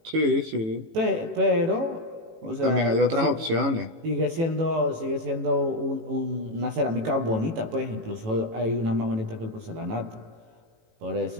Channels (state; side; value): late; left; 18 ms